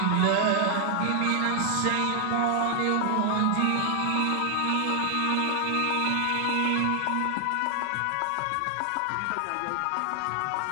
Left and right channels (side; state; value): both; different; correlation 0.00